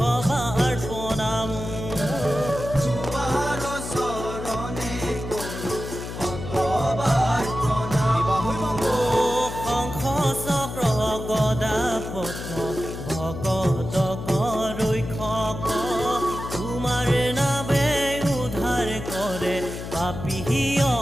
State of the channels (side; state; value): left; noise; hum, 8 dB below the sound